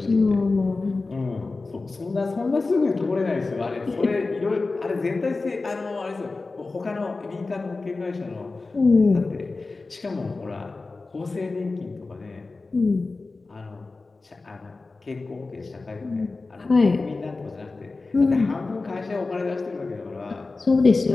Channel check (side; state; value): right; quieter; 3.7 dB